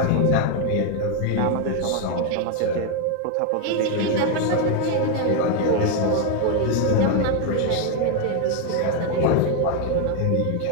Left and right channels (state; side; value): different; both; correlation 0.01